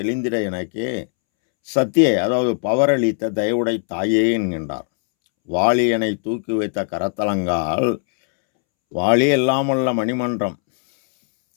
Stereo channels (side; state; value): right; silent; 66 dB below the other